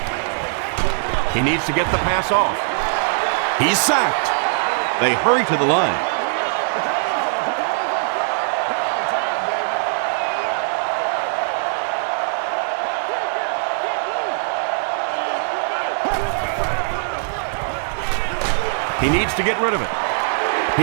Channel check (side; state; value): left; silent; digital silence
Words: He needs to get the pass off. He's sacked. They hurry to the line. He needs to get rid of it.